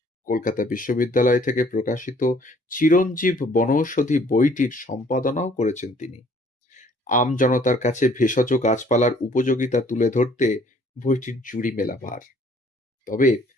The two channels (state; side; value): normal; both; correlation 0.59